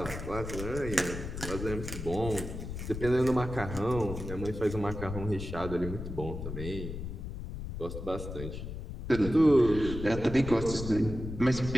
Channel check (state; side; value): noise; left; rumble, 7 dB below the sound